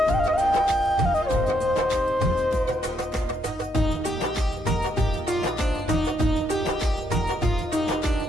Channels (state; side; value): normal; both; correlation 0.75